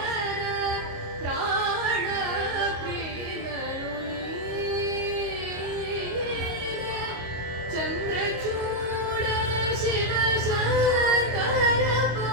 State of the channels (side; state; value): left; late; 25 ms